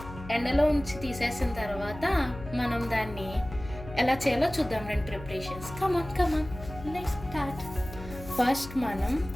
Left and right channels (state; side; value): noise; left; hum, 13 dB below the sound